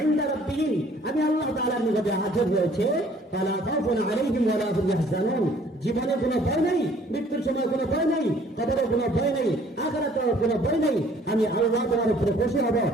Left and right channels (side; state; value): both; normal; correlation 0.57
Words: ইনদা রাব্বিহিম, আমি আল্লাহ তাআলার নিকটে আজর রয়েছে। ফালা খাউফুন আলাইহিম ওয়া লা হুম ইয়াহজানুন, জীবনে কোনো ভয় নেই, মৃত্যুর সময় কোনো ভয় নেই, কবরে কোনো ভয় নেই, আখিরাতে কোনো ভয় নেই। আমি আল্লাহ তোমার উপরে খুশি হব,